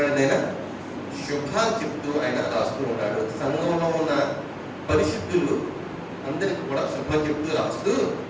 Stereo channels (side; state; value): both; identical; correlation 1.00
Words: ఆయన శుభాలు చెప్తూ ఆయన రాస్తూ ఉన్నాడు. సంఘంలో ఉన్న పరిశుద్ధులు అందరికి కూడా శుభం చెప్తూ రాస్తూ,